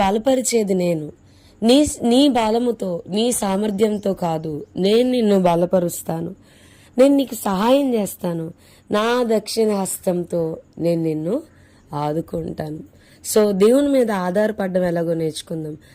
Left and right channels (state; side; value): identical; both; correlation 1.00